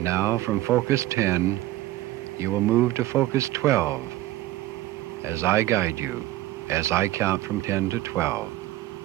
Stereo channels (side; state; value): left; quieter; 15.9 dB